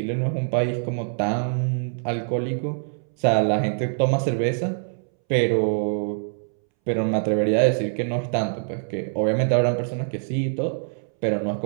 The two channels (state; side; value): silent; left; 62 dB below the other